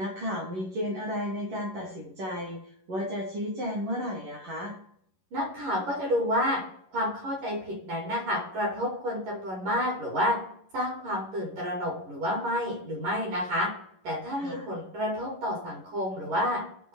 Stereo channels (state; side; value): late; left; 11 ms